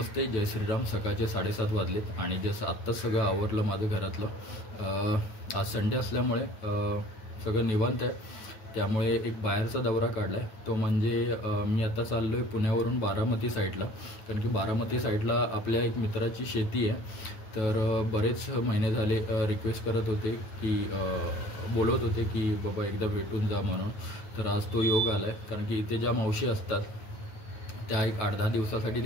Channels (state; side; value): late; right; 9.2 ms